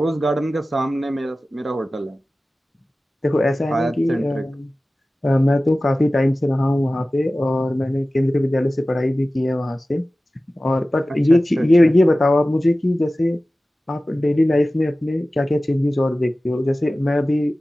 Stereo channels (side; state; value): both; normal; correlation 0.96